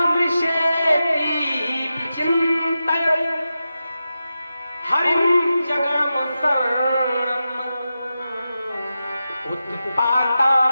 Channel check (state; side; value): inverted; both; correlation -0.91